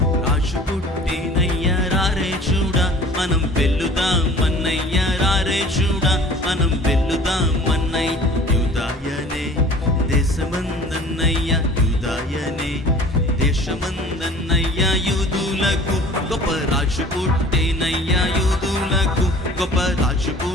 రాజు పుట్టేనయ్య రారే చూడా మనం వెల్లుదాం అన్నయ్య రారే చూడా మనం వెల్లుదాం అన్నయ్య యూదాయనే దేశమందన్నయ్య యూదాయనే దేశమందన్నయ్య యూదులకు గొప్ప రాజు పుట్టేనయ్య యూదులకు గొప్ప రాజు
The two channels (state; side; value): normal; both; correlation 0.47